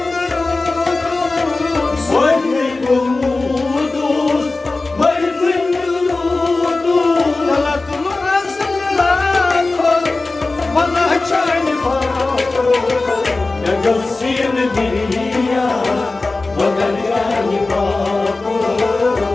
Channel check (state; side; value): quieter; right; 3.4 dB